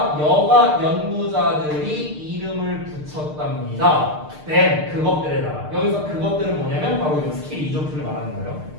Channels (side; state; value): left; late; 6.6 ms